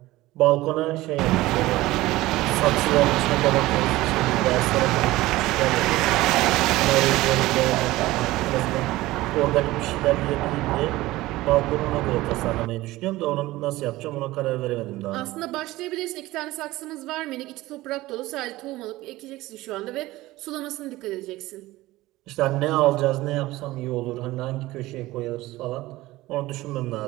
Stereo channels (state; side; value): quieter; left; 18.0 dB